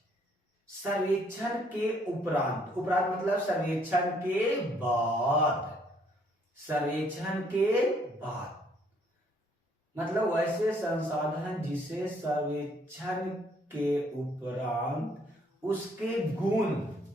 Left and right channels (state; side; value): normal; both; correlation 0.65